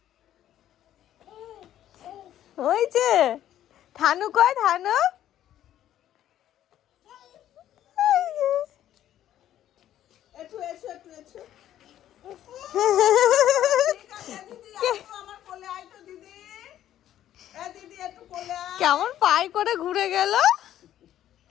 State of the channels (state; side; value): quieter; right; 11.8 dB